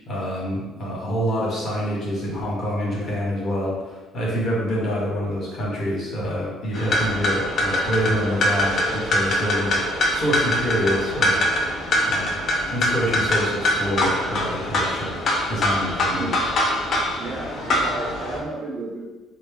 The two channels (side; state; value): both; normal; correlation 0.63